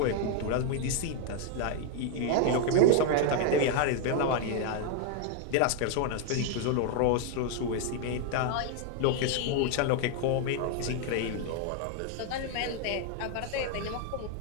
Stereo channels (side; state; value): both; different; correlation 0.01